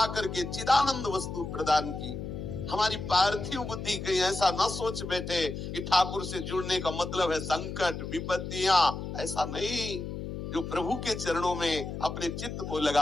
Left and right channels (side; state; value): left; noise; hum, 6 dB below the sound